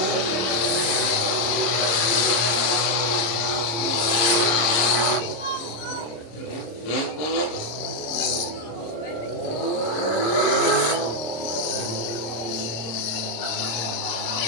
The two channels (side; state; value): right; late; 26 ms